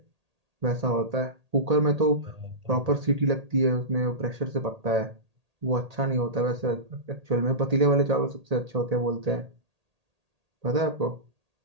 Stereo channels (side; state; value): left; late; 1.8 ms